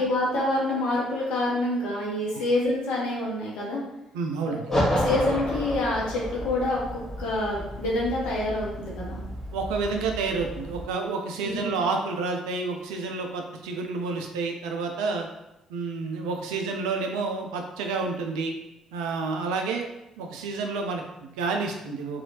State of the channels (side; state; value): both; normal; correlation 0.55